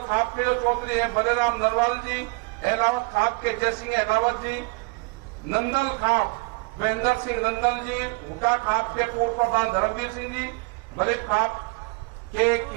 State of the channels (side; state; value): left; quieter; 28.2 dB